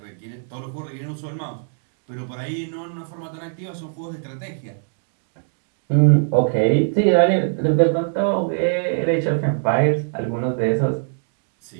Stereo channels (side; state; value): left; silent; digital silence